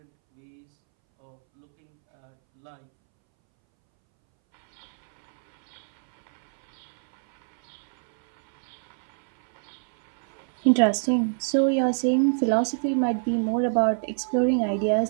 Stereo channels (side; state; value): left; silent; 62 dB below the other